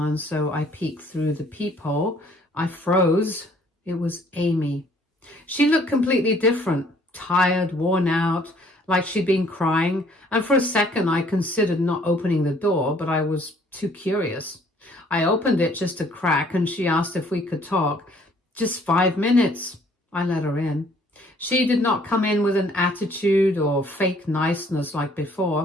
so I peeked through the peephole. I froze. It was Amy. She looked completely different, tired, worn out, like she'd been crying. And for a second, I considered not opening the door, but I was too curious. I opened it just a crack and she asked if we could talk. Just 5 minutes. I let her in. She did not come in with an attitude or fake niceness like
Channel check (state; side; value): normal; both; correlation 0.60